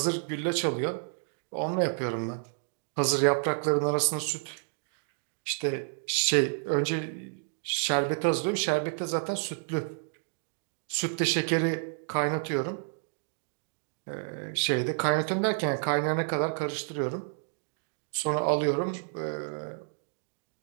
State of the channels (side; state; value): left; silent; digital silence